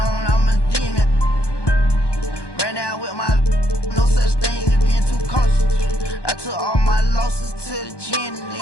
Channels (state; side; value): late; right; 1.2 ms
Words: I'm a demon. Ran out with my no such thing as being too cautious. I took all my losses to the gym and then